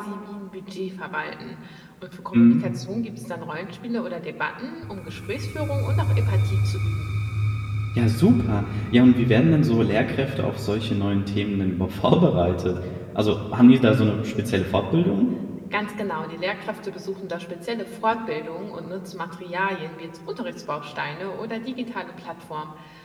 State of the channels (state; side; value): identical; both; correlation 1.00